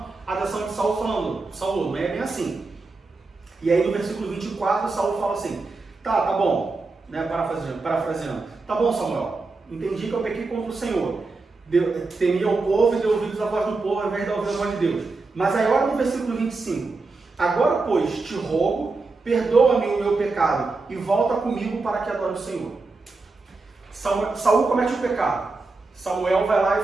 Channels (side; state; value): left; quieter; 3.8 dB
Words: a atenção de Saul falando: Saul, não é bem assim. E aí no versículo 24, Saul fala assim: tá bom, né, parafraseando, tá bom, Samuel, entendi que eu pequei contra o Senhor. Temia o povo e deu ouvidos à voz do povo ao invés de ouvir a voz de Deus. Mas aí olha no versículo 25. Agora, pois, te rogo, perdoa-me o meu pecado e volta comigo para que adore o Senhor. Saul comete o pecado. Samuel vai lá e